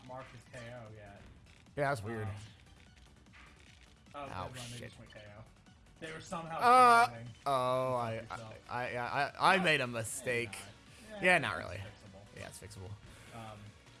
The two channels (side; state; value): both; identical; correlation 1.00